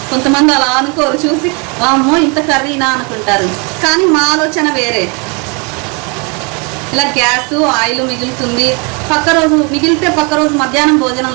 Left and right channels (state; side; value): quieter; left; 32.7 dB